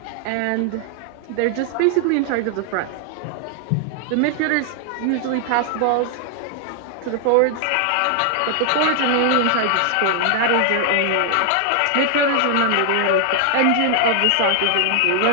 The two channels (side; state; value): both; different; correlation 0.00